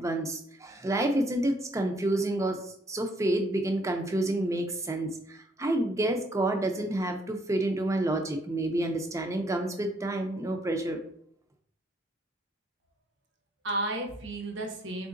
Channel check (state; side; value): normal; both; correlation 0.67